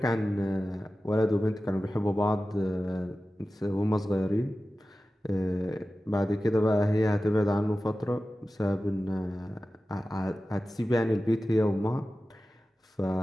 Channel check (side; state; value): both; normal; correlation 0.95